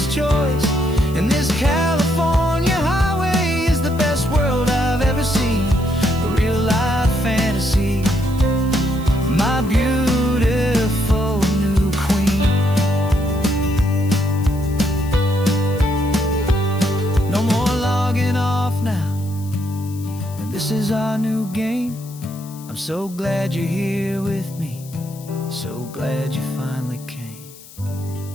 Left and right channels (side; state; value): left; noise; hiss, 20 dB below the sound